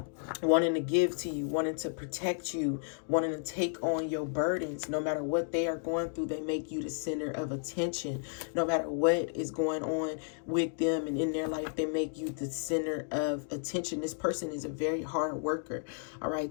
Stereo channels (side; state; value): right; silent; digital silence